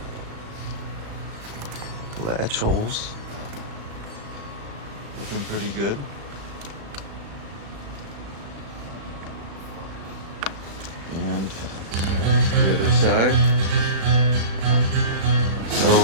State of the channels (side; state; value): left; late; 36 ms